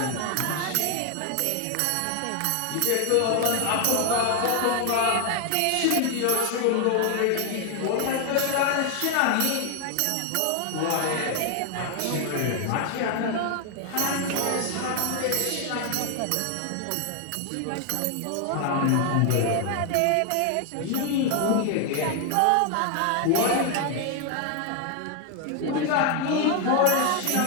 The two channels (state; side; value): different; both; correlation 0.00